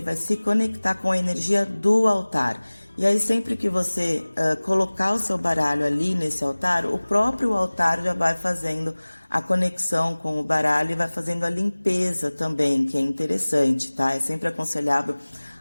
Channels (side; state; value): both; inverted; correlation -1.00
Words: vai se conectar com a energia do altar. E aí sempre que você colocar o seu baralho ali nesse altar, o próprio altar já vai fazendo a conexão com o baralho e vai fazendo a limpeza também, que é interessante, tá? É sempre aconselhável,